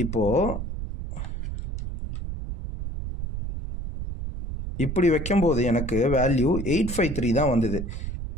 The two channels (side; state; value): right; noise; rumble, 6 dB below the sound